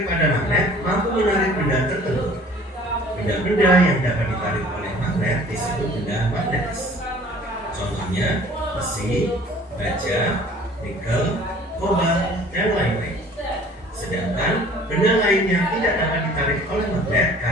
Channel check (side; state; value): both; normal; correlation 0.50